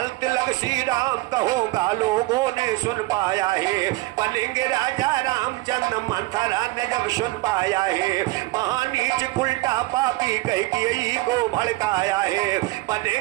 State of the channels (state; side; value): quieter; left; 20.7 dB